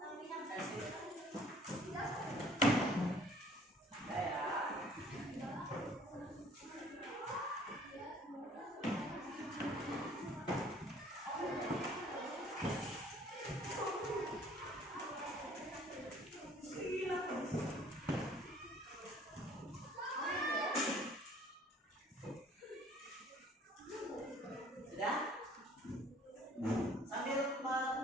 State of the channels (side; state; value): both; normal; correlation 0.55